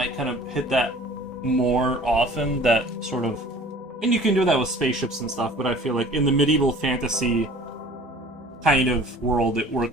kind of hit that more often, that sort of... And you can do that with spaceships and stuff, but I feel like in the medieval fantasy kind of world, it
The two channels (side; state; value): both; normal; correlation 0.47